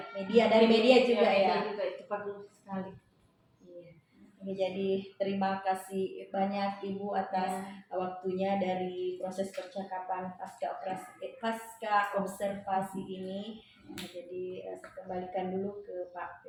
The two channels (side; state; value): both; identical; correlation 1.00